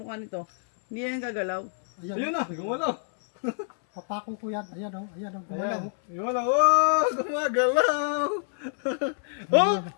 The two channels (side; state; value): right; silent; 60 dB below the other